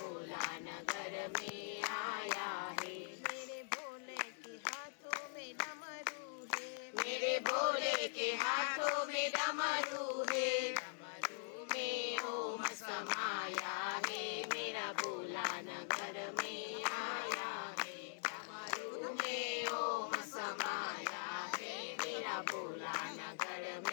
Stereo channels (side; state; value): right; silent; digital silence